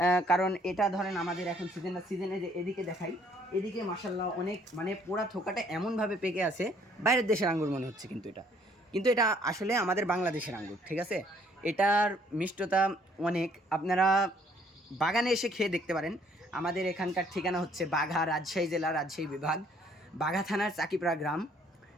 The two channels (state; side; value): normal; both; correlation 0.63